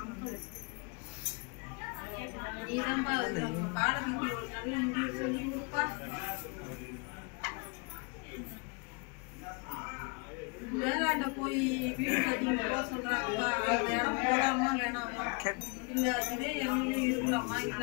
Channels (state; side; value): quieter; right; 32.9 dB